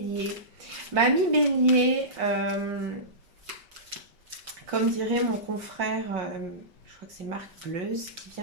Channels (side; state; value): left; late; 5.2 ms